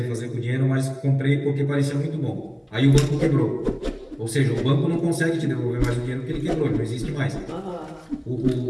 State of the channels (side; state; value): both; identical; correlation 1.00